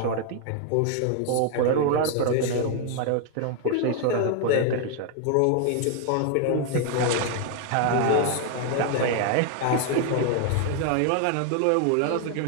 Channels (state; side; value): different; both; correlation 0.00